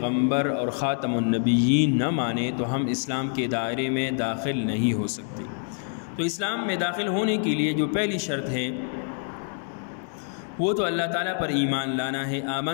اور خاتم النبیین نہ مانے تو ہم اسلام کے دائرے میں داخل نہیں ہو سکتے۔ تو اسلام میں داخل ہونے کے لیے جو پہلی شرط ہے وہ تو اللہ تعالیٰ پر ایمان لانا ہے۔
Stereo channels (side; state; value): right; silent; 61 dB below the other